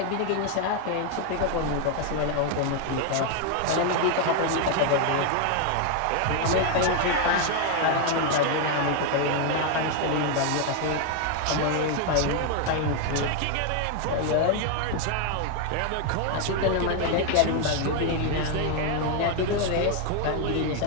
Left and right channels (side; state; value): both; different; correlation 0.01